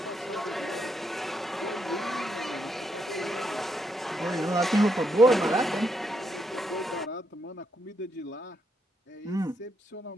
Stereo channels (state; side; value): normal; both; correlation 0.79